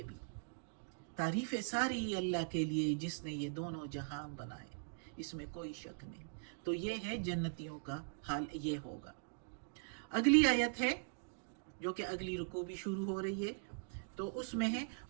بھی، تعریفیں ساری اللہ کے لیے جس نے یہ دونوں جہان بنائے، اس میں کوئی شک نہیں۔ تو یہ ہے جنتیوں کا حال، یہ ہوگا۔ اگلی آیت ہے جو کہ اگلی رکوع بھی شروع ہو رہی ہے، تو اس میں ہے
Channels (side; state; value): left; silent; digital silence